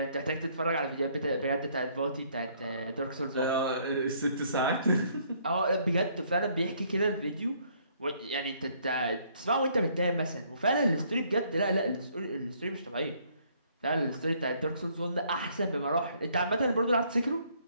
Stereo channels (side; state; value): both; inverted; correlation -0.65